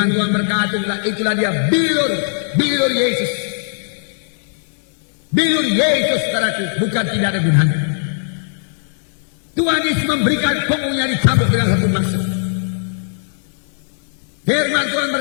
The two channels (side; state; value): right; silent; digital silence